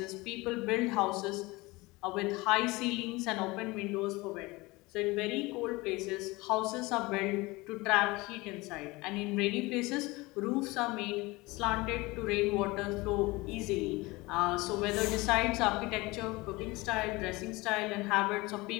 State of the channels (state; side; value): quieter; right; 22.4 dB